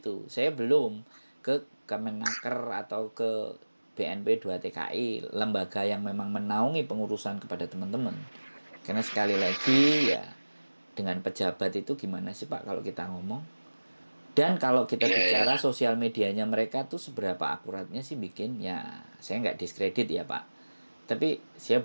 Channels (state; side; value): inverted; both; correlation -1.00